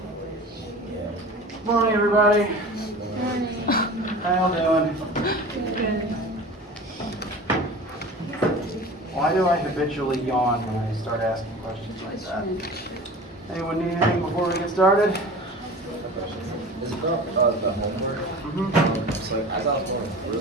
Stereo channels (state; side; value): normal; both; correlation 0.37